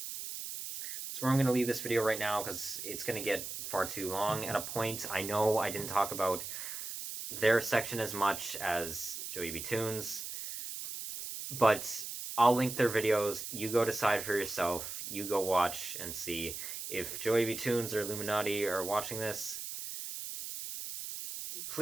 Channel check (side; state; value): right; noise; hiss, 7 dB below the sound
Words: where I'm going to leave this video right now, because it's going to get far too long at a point. I know I didn't talk about their section as much as JoeyBToonz, but I'll link their videos. You go decide for yourself. You go watch and see. If JoeyBToonz or Illuminaughtii are watching this,